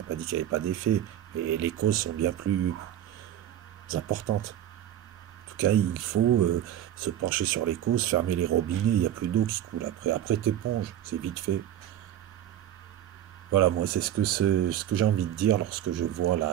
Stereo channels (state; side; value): quieter; left; 11.6 dB